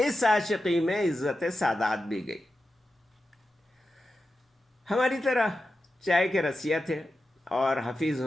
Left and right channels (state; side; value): normal; both; correlation 0.91